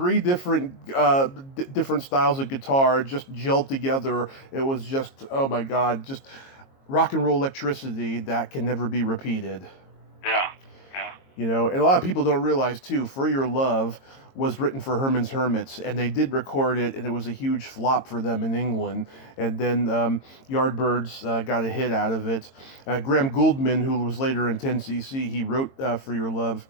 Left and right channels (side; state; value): right; late; 22 ms